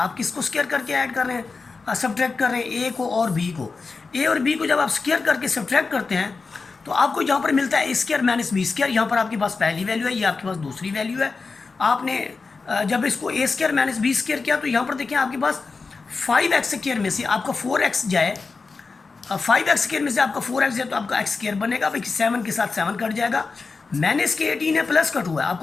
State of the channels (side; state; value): right; quieter; 4.4 dB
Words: किसको स्क्वायर करके ऐड कर रहे हैं, सब्ट्रैक्ट कर रहे हैं a को और b को। a और b को जब आप स्क्वायर करके सब्ट्रैक्ट करते हैं तो आपको यहाँ पर मिलता है a square minus b square. यहाँ पर आपके पास पहली वैल्यू है, ये आपके पास दूसरी वैल्यू है। आपने जब इसको a square minus b square किया तो यहाँ पर देखिए आपके पास 5x स्क्वायर में से आपका 4x जाए, 5x स्क्वायर में से आपका 4x जाए तो आपका x स्क्वायर बनेगा। भाई 7 के साथ 7 कट जाएगा, माइनस के 18 है, प्लस का 2 है,